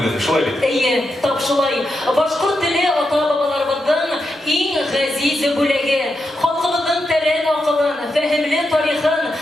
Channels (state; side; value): normal; both; correlation 0.86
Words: шулай бит? Әйе, тап шулай. Башкорт теле ата-бабаларыбызның иң ғәзиз бүлеге. Халкыбызның тәрән акылын, фәһемле тарихын,